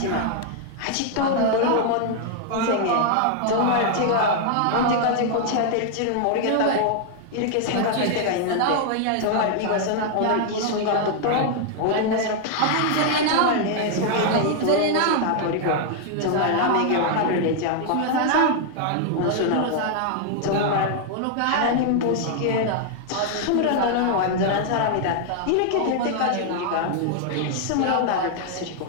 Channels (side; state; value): both; different; correlation 0.00